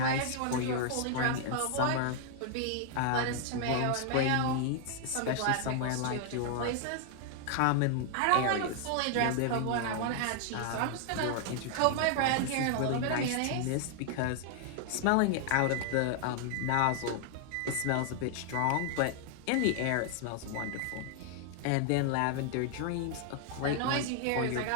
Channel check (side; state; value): both; different; correlation 0.00